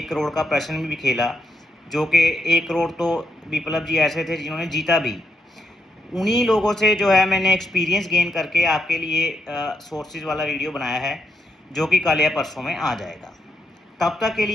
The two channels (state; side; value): normal; both; correlation 0.80